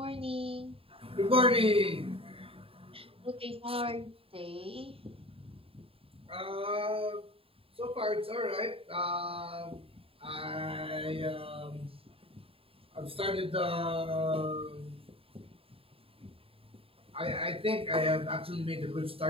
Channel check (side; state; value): left; late; 0.27 ms